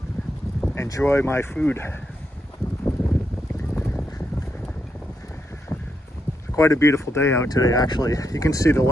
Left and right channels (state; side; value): normal; both; correlation 0.80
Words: enjoy my food. Quite a beautiful day out today, actually. You can see the